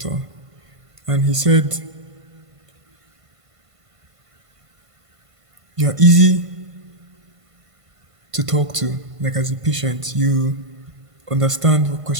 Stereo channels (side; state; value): left; late; 1.5 ms